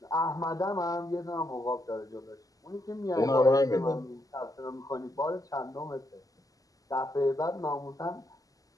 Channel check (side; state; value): right; late; 0.17 ms